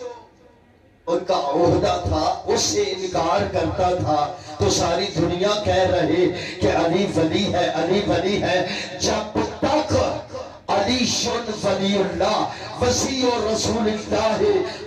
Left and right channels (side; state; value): both; identical; correlation 1.00